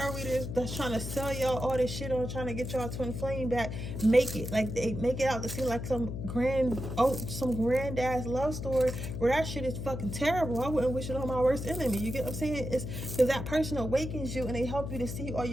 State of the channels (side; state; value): left; noise; hum, 6 dB below the sound